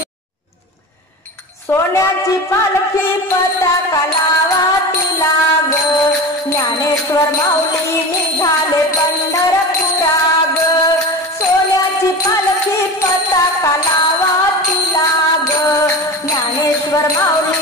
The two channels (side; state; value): both; normal; correlation 0.30